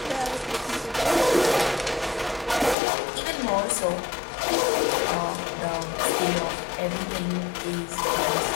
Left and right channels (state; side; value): drops out; right; at 2.8 s